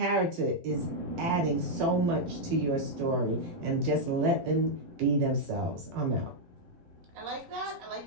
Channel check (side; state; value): left; late; 12 ms